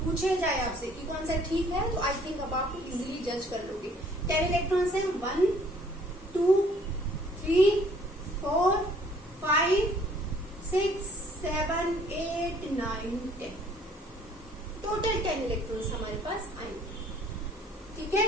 पूछे जाए आपसे कि कौन सा ठीक है, तो आई थिंक अब आप इजीली जज कर लोगे। 10 इलेक्ट्रॉन्स हैं, 1 2 3 4 5 6 7 8 9 10, टोटल 10 इलेक्ट्रॉन्स हमारे पास आएंगे। ठीक है,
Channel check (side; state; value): both; normal; correlation 0.59